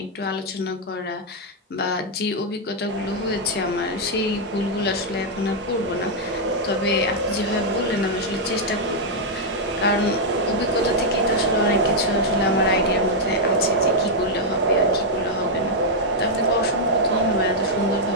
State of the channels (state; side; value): normal; both; correlation -0.03